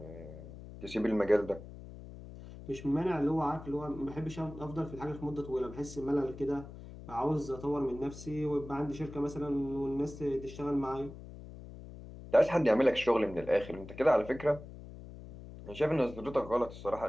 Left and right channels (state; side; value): noise; left; hum, 14 dB below the sound